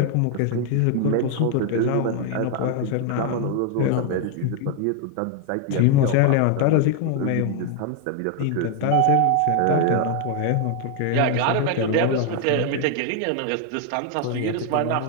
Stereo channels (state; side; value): different; both; correlation 0.01